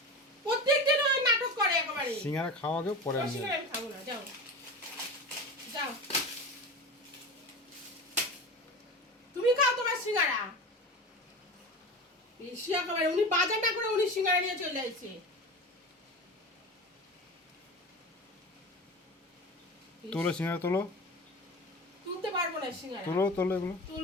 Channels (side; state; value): both; normal; correlation 0.29